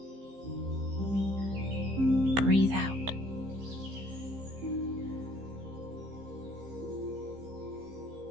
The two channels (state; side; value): late; left; 15 ms